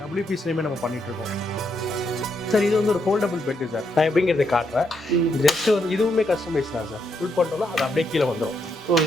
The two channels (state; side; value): normal; both; correlation 0.78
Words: WPCலையுமே நம்ம பண்ணிட்டு இருக்கோம் சார். இது வந்து ஒரு ஃபோல்டபுள் பெட்டு சார். நான் எப்படிங்கிறத காட்டுறேன். ஜஸ்ட் வந்து இதுவுமே கஸ்டமைஸ் தான் சார். ஃபுல் பண்ணிட்டோம்னா அது அப்படியே கீழே வந்துடும்.